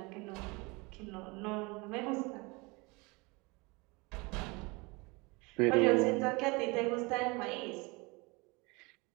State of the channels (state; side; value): quieter; left; 26.4 dB